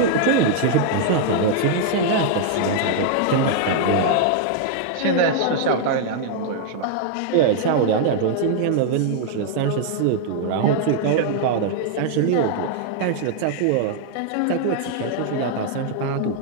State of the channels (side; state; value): both; different; correlation 0.00